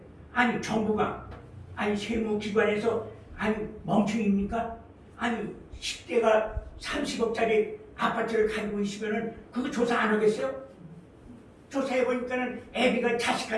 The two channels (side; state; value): both; identical; correlation 1.00